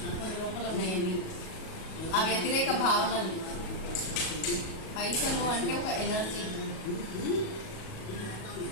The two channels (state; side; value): late; right; 37 ms